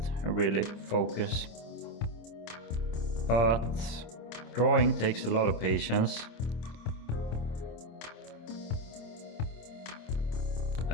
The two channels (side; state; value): right; late; 26 ms